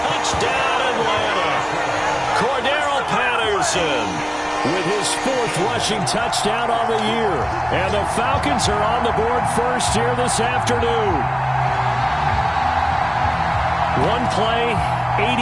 Atlanta. Cordero Patterson with his 4th rushing touchdown on the year. And the Falcons are on the board first here this afternoon. One play, 80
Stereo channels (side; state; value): both; identical; correlation 1.00